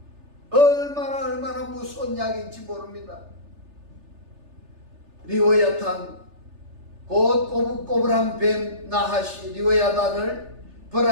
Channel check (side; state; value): left; late; 3.3 ms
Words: 얼마나 무서운 약인지 모릅니다. 리워야탄, 곧 꼬불꼬불한 뱀 나하시 리워야탄을